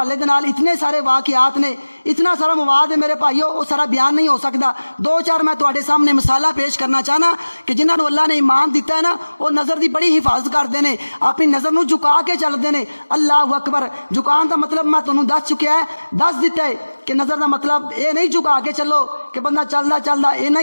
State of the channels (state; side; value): inverted; both; correlation -1.00